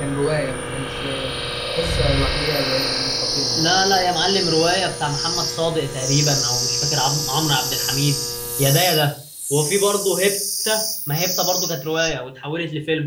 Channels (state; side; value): identical; both; correlation 1.00